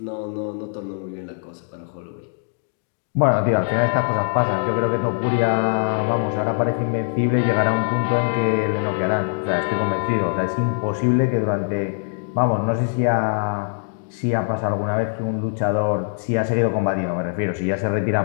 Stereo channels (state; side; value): silent; right; digital silence